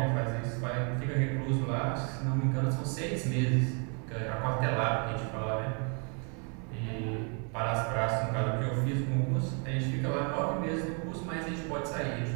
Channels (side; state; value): left; quieter; 37.6 dB